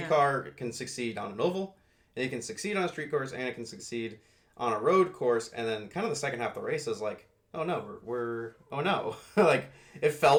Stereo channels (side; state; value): both; identical; correlation 1.00